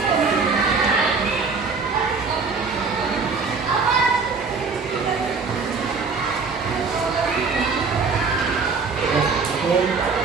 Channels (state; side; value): quieter; left; 4.7 dB